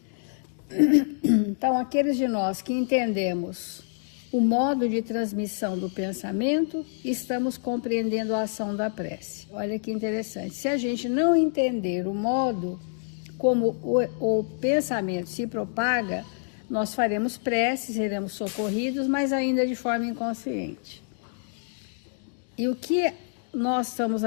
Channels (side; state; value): right; silent; digital silence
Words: Então, aqueles de nós que entendemos o modo de transmissão do pensamento, estamos compreendendo a ação da prece. Olha que interessante. Se a gente não entender o modo como o pensamento se propaga, nós faremos preces, seremos socorridos, mas ainda de forma inconsciente. E o que nós estamos